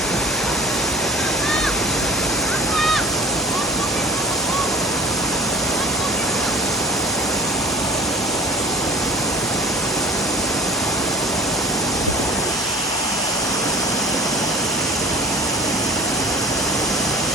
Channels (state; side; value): normal; both; correlation 0.41